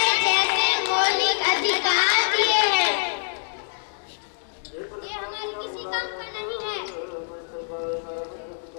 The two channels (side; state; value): right; silent; digital silence